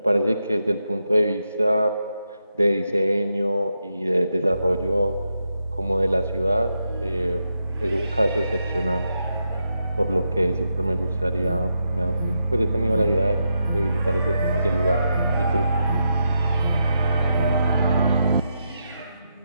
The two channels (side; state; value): both; inverted; correlation -0.83